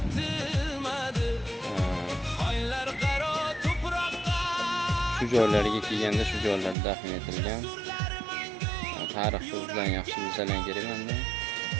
Shu joylarga kelganda shu joylarda dafn etilgan. Tarixni bilan yaxshi bilsalar kerak menda.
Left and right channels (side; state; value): left; drops out; at 6.8 s